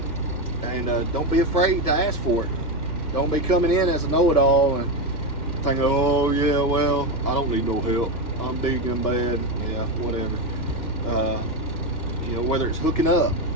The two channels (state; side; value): late; right; 2.1 ms